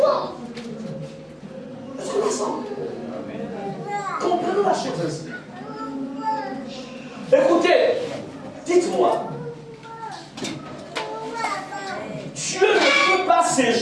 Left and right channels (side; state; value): both; identical; correlation 1.00